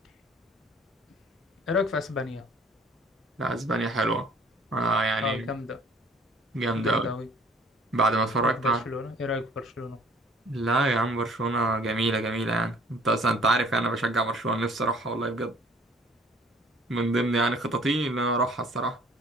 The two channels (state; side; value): normal; both; correlation 0.54